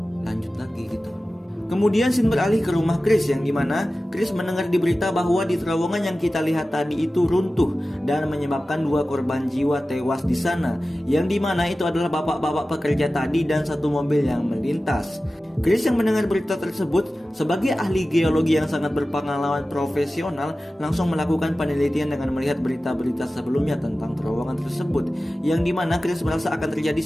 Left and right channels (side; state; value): both; normal; correlation 0.95